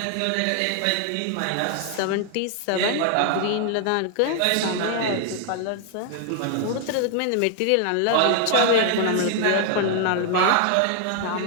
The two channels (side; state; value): both; different; correlation 0.00